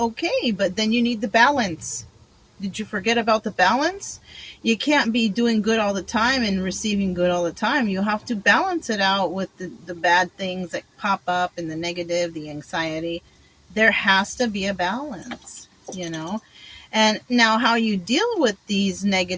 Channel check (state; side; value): identical; both; correlation 1.00